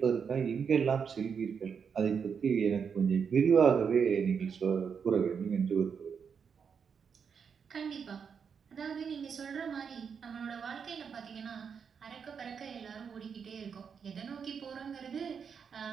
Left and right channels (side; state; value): left; quieter; 6.6 dB